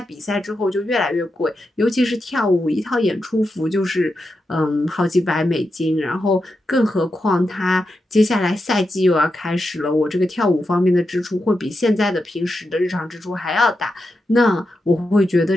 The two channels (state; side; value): normal; both; correlation 0.87